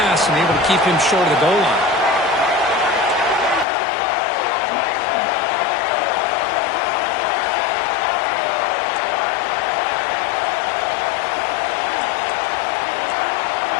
and able to keep him short of the goal line.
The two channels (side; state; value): right; drops out; at 3.7 s